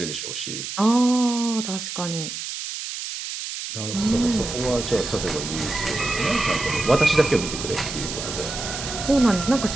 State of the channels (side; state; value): right; noise; hiss, 6 dB below the sound